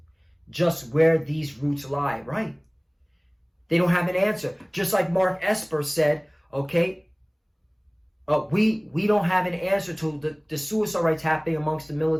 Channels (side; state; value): both; identical; correlation 1.00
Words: just where these roots lie, right? They don't have an answer. Just like Mark Esper said, okay, we don't have an answer to the suicide rates happening amongst the